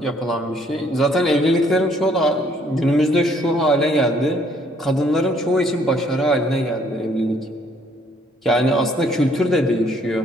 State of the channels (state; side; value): normal; both; correlation 0.64